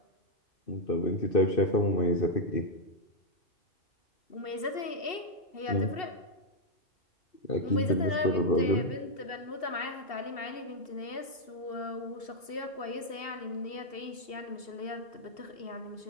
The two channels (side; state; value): right; late; 2.7 ms